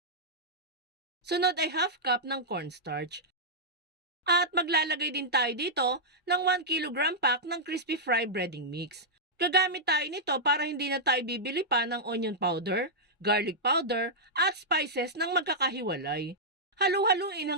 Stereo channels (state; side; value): normal; both; correlation -0.09